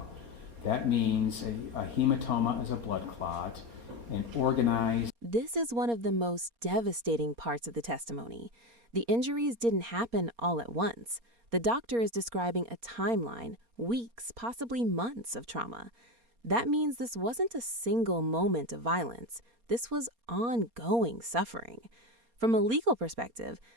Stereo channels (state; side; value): late; left; 4.3 ms